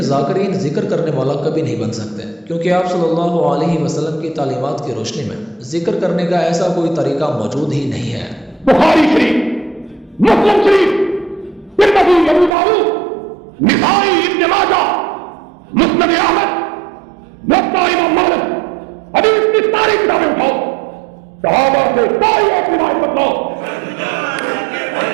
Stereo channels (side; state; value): left; drops out; at 12.6 s